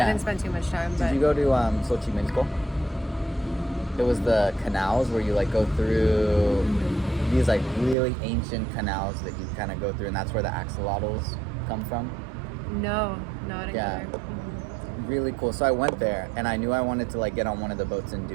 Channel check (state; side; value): drops out; left; at 8.0 s